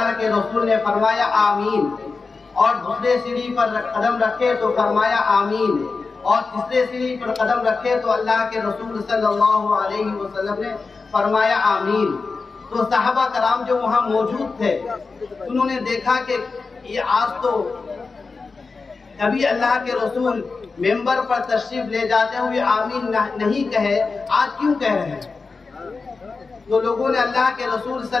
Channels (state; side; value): quieter; right; 4.3 dB